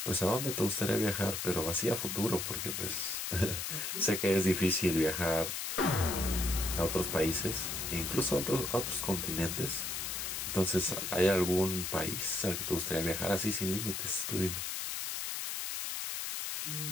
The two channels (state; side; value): noise; left; hiss, 3 dB below the sound